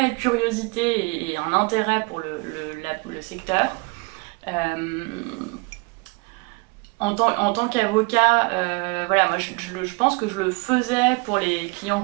curiosité et un intérêt pour le secteur. Euh, en tant qu'avocat, voilà, moi je pense que je le faisais pour les clients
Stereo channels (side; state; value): left; quieter; 28.7 dB